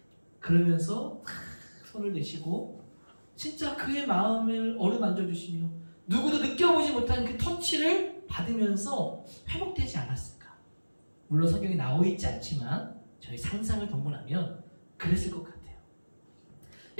그러면서 손을 대시고 진짜 그의 마음을 어루만져 주시며 누구도 느껴보지 못한 그 터치를 받으면서 회복되지 않았을까? 물론 성경에 나와 있지 않지만 저희 상상을 동원하면 그랬을 것 같아요.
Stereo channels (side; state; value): both; inverted; correlation -1.00